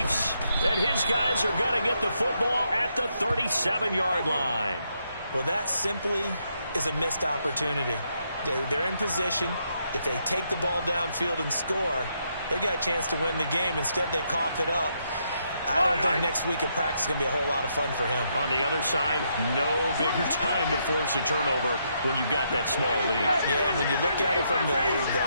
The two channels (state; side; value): inverted; both; correlation -0.77